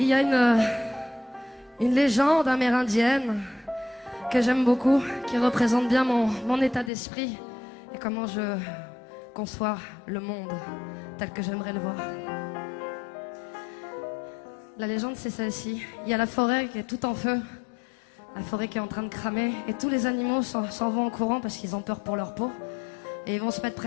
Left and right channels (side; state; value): right; drops out; at 6.9 s